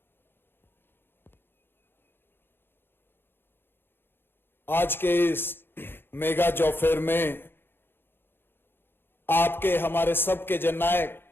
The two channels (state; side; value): late; right; 0.10 ms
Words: आज के इस मेगा जॉब फेयर में आपके हमारे सबके जननायक